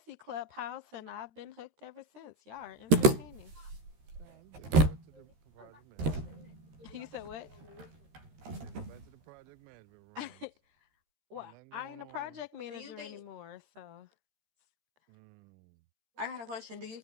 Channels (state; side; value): late; left; 13 ms